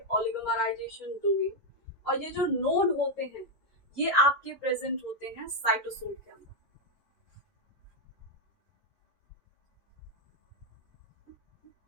ओलिगोमराइजेशन डोमेन, और ये जो नोड होते हैं ये आपके प्रेजेंट होते हैं साइटोसोल के अंदर।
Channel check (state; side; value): late; right; 5.4 ms